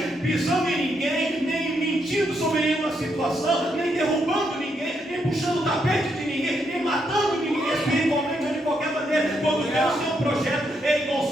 pisando em ninguém, nem mentindo sobre nenhuma situação, nem derrubando ninguém, nem puxando o tapete de ninguém, nem matando ninguém espiritualmente ou de qualquer maneira. Quando Deus tem um projeto, Ele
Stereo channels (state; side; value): normal; both; correlation 0.78